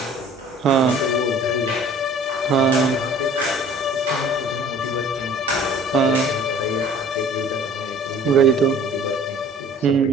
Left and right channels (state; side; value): normal; both; correlation 0.50